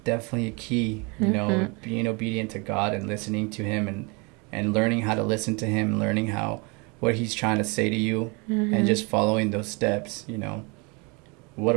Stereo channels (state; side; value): quieter; left; 29.9 dB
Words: a key. Mm-hmm. Being obedient to God and listening to Him, and learning how to listen to Him, learning what He's trying to say to you, and just following those steps. What